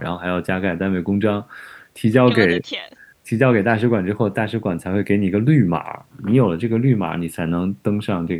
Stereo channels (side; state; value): both; identical; correlation 1.00